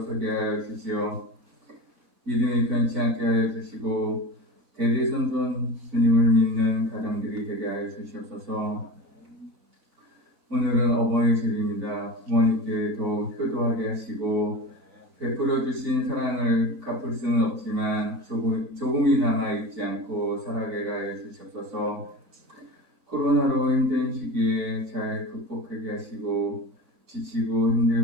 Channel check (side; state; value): both; normal; correlation 0.29